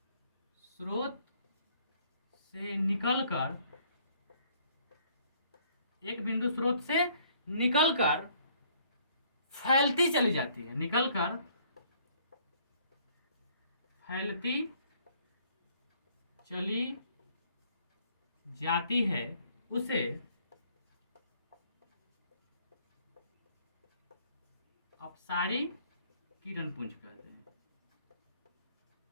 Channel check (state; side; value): inverted; both; correlation -0.62